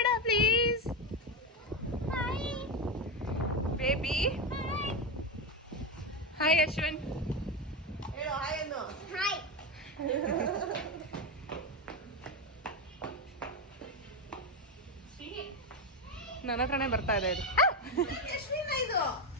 please. Hi baby. Hi Ashwin. ಹೇಳು ಹಾಯ್ ಅನ್ನು. ಹಾಯ್. ನನ್ನ ಹತ್ರನೇ ಬರ್ತಾ ಇದೆ ಇದು. ಎಷ್ಟಿನ ಇದು?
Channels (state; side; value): normal; both; correlation 0.13